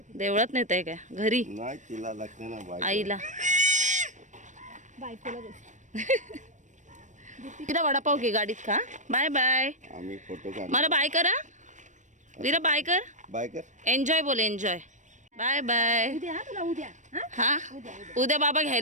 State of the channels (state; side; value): late; left; 0.35 ms